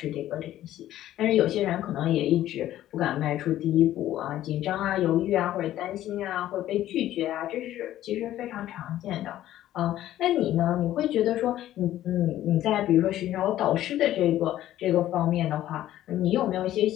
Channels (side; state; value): right; quieter; 13.3 dB